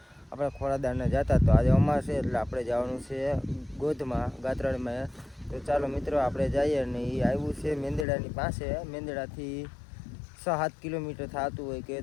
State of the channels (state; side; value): drops out; right; at 8.1 s